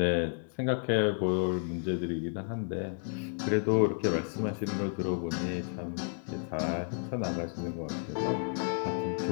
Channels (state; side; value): silent; right; 57 dB below the other